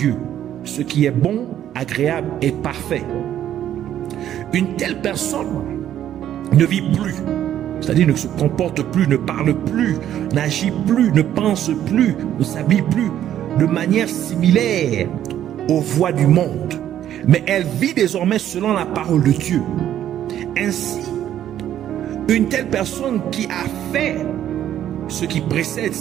ce qui est bon, agréable et parfait. Une telle personne ne vit plus, c'est-à-dire ne se comporte plus, ne parle plus, n'agit plus, ne pense plus, ne s'habille plus de manière similaire aux voies du monde, mais elle vit désormais selon la parole de Dieu. Ainsi, une telle personne qui a fait ce qui précède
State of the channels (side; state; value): left; quieter; 11.2 dB